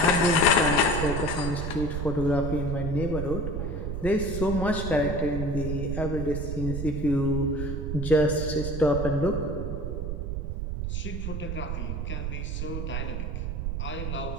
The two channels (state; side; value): noise; right; rumble, 3 dB below the sound